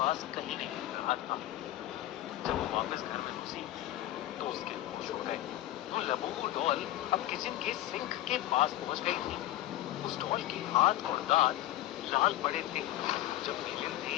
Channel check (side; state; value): right; quieter; 14.6 dB